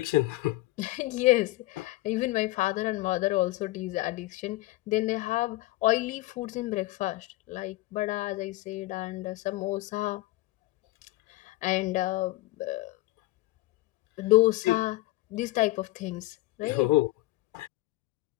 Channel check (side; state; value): right; quieter; 18.6 dB